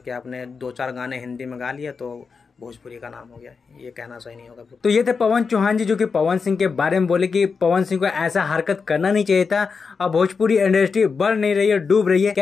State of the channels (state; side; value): quieter; right; 5.2 dB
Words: आपने 2-4 गाने हिंदी में गा लिए तो भोजपुरी का नाम हो गया, ये कहना सही नहीं होगा। तो ये थे पवन चौहान जी, जो कि पवन सिंह के बारे में बोले कि पवन सिंह को ऐसा हरकत करना नहीं चाहिए था। अब भोजपुरी इंडस्ट्री बढ़ नहीं रही है, डूब रही है।